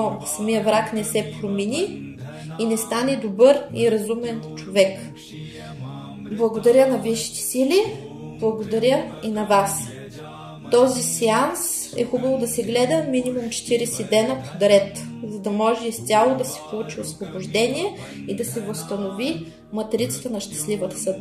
самия враг не се промени и не стане добър и разумен човек. Благодаря на висшите сили, благодаря и на вас. Този сеанс е хубаво да се гледа минимум 40 дена подред, за да може изцяло да се получи освобождение и да се възстанови матрицата на щастливата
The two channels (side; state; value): both; identical; correlation 1.00